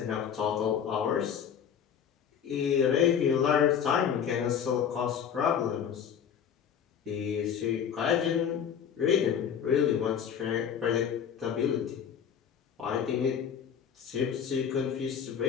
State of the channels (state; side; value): quieter; right; 8.0 dB